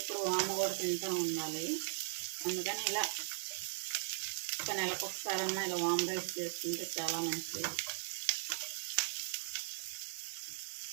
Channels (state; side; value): silent; left; digital silence